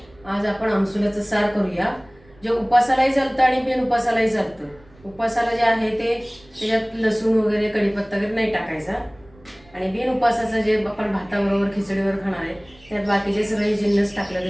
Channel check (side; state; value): right; noise; rumble, 27 dB below the sound